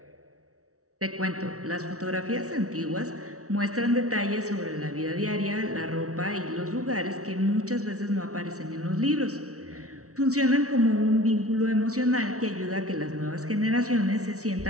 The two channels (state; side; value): late; left; 0.65 ms